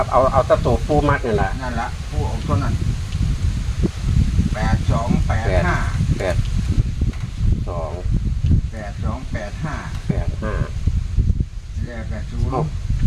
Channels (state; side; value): identical; both; correlation 1.00